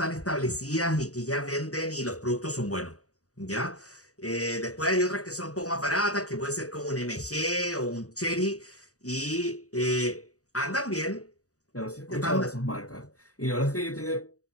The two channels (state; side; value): late; right; 0.66 ms